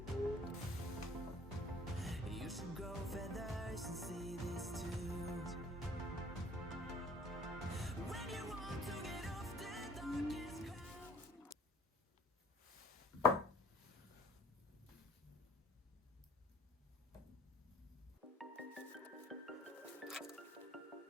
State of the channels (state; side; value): normal; both; correlation 0.51